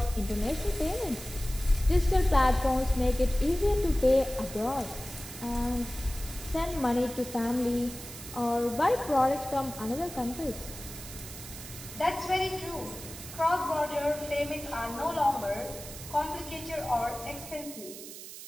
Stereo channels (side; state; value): right; noise; hiss, 12 dB below the sound